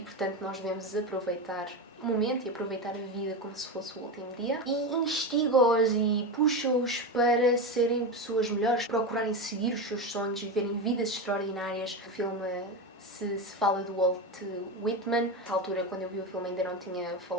nós devemos aproveitar o momento e aproveitar a vida como se fosse o último dia, e instiga-os e puxa-os para serem pessoas melhores, procurarem seguir os seus sonhos, viverem vidas extraordinárias. O filme se fala do Walt Whitman. Na altura, quando eu vi o filme, ainda não tinha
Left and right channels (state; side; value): normal; both; correlation 0.17